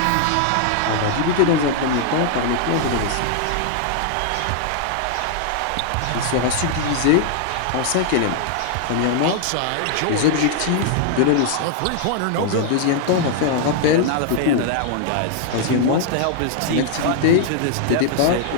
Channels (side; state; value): both; different; correlation 0.00